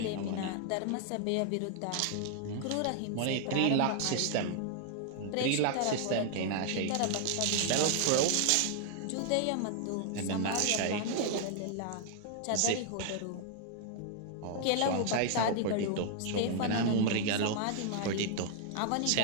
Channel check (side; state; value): both; different; correlation 0.00